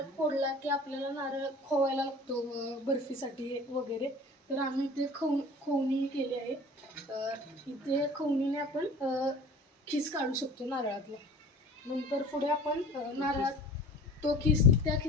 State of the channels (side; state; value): both; normal; correlation 0.42